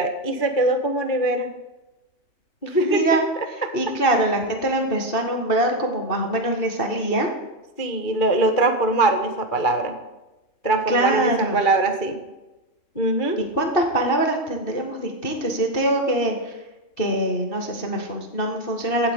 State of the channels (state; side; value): late; right; 2.7 ms